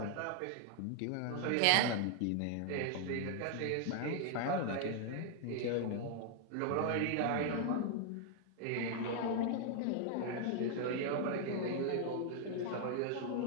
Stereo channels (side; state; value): both; different; correlation 0.00